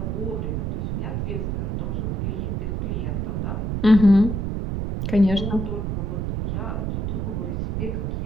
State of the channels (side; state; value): right; noise; rumble, 1 dB below the sound